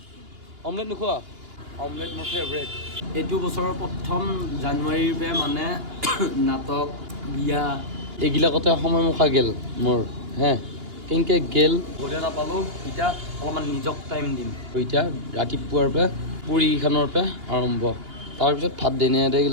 অমলেট নোখোৱা অমলেট মোৰ ফেভৰেট এইটো বছৰৰ প্ৰথম জানুৱাৰীৰ পৰা মানে নাটক বিয়া এইবিলাকতে সময় মুখা গেল মোৰ হে কেনেকৈ গেল ঘৰে নাপালোঁ এতিয়া অলপমান নিজক টাইম দিম এতিয়া ৰাতিপুৱাৰ পৰা পুৰীকেইখনৰ পৰা আৰম্ভ তাৰপিছত ভাত দেনে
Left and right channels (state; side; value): late; left; 2.8 ms